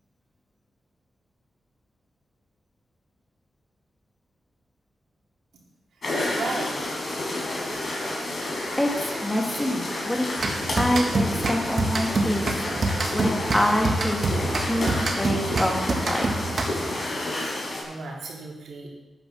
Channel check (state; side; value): normal; both; correlation 0.89